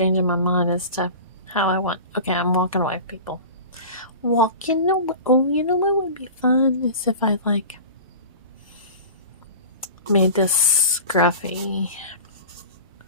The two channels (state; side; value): inverted; both; correlation -0.34